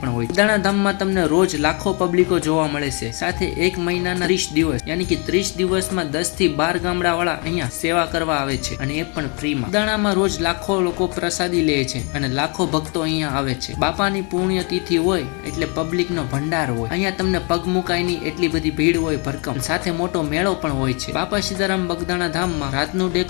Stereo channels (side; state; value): right; quieter; 34.2 dB